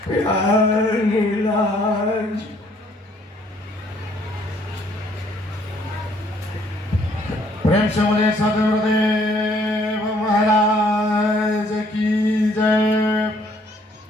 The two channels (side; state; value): both; normal; correlation 0.63